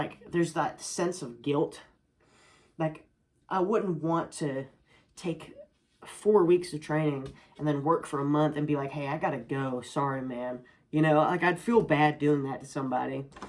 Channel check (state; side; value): identical; both; correlation 1.00